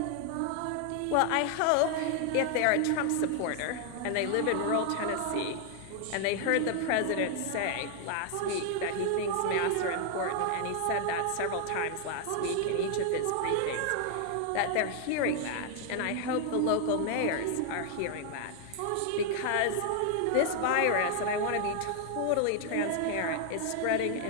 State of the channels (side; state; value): both; different; correlation 0.00